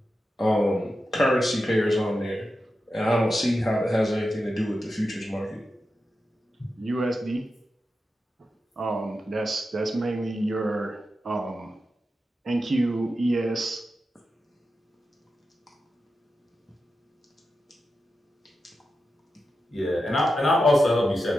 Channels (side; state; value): both; normal; correlation 0.90